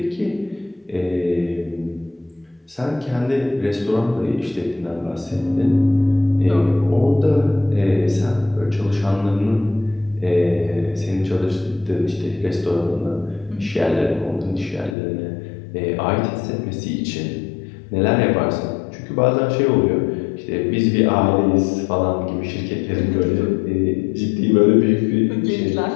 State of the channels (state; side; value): drops out; right; at 15.0 s